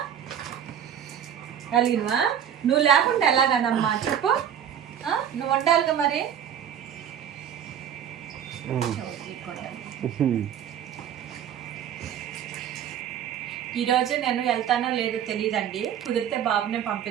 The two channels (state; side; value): quieter; left; 9.3 dB